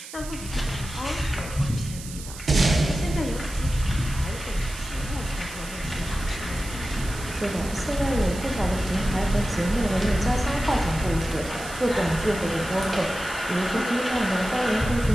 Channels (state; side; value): noise; right; hiss, 13 dB below the sound